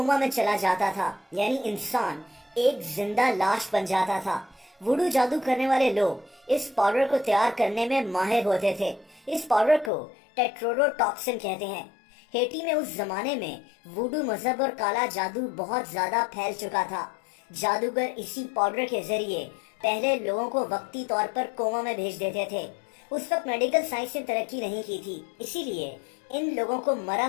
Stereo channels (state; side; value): drops out; right; at 9.9 s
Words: میں چلا جاتا تھا، یعنی انسان ایک زندہ لاش بن جاتا تھا۔ ووڈو جادو کرنے والے لوگ اس پاؤڈر کو تیار کرنے میں ماہر ہوتے تھے۔ اس پاؤڈر کو ٹیٹروڈو ٹاکسن کہتے ہیں۔ ہیٹی میں اس زمانے میں ووڈو مذہب اور کالا جادو بہت زیادہ پھیل چکا تھا۔ جادوگر اسی پاؤڈر کے ذریعے پہلے لوگوں کو وقتی طور پر کوما میں بھیج دیتے تھے۔ اس وقت میڈیکل سائنس نے ترقی نہیں کی تھی، اسی لیے ان لوگوں کو مرا